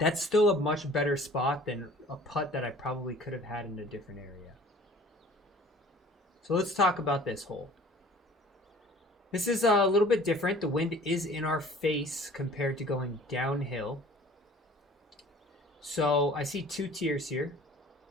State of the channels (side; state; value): both; normal; correlation 0.48